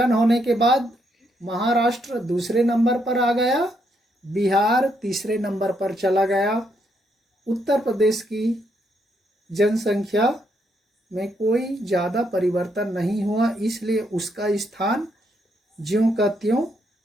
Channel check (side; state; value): both; normal; correlation 0.76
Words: होने के बाद महाराष्ट्र दूसरे नंबर पर आ गया, बिहार तीसरे नंबर पर चला गया। उत्तर प्रदेश की जनसंख्या में कोई ज़्यादा परिवर्तन नहीं हुआ, इसलिए उसका स्थान ज्यों का त्यों